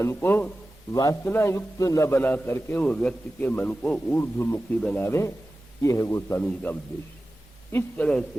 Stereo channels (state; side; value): normal; both; correlation 0.95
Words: को वासना युक्त न बना करके वो व्यक्ति के मन को ऊर्ध्वमुखी बनावे। ये है गोस्वामी जी का उद्देश्य। इस तरह